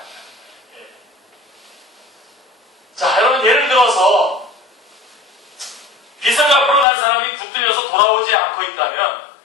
자, 여러분 예를 들어서 빚을 갚으러 간 사람이 붙들려서 돌아오지 않고 있다면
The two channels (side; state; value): right; drops out; at 6.9 s